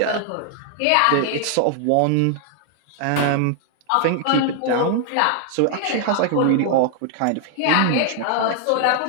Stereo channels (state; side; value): different; both; correlation 0.00